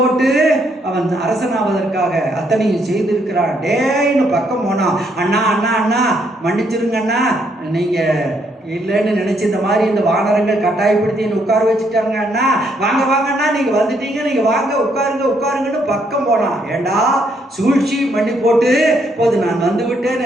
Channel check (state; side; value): normal; both; correlation 0.72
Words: அவன் அரசனாவதற்காக அத்தனையும் செய்திருக்கிறான். டேன்னு பக்கம் போனான். அண்ணா அண்ணா அண்ணா மன்னிச்சிருங்க அண்ணா, நீங்க இல்லைன்னு நினைச்சு இந்த மாதிரி இந்த வானரங்கள் கட்டாயப்படுத்தி என்ன உட்கார வச்சுட்டாங்க அண்ணா, வாங்க வாங்கண்ணா நீங்க வந்துட்டீங்க, நீங்க வாங்க உட்காருங்கன்னு பக்கம் போனான். ஏண்டா சூழ்ச்சி மண்ணி போட்டு போது நான் வந்து விட்டேன்